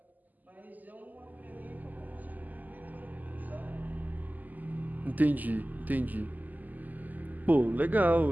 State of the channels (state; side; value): late; left; 0.082 ms